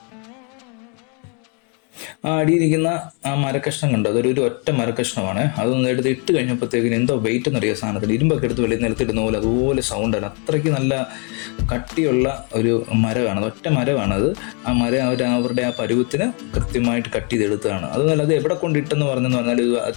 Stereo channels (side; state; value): right; quieter; 36.2 dB